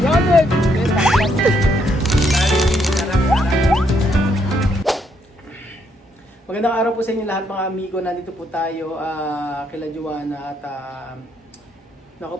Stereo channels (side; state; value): both; normal; correlation 0.74